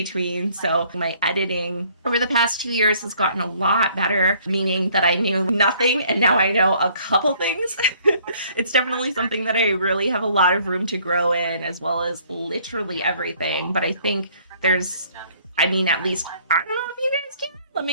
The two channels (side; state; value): both; inverted; correlation -0.60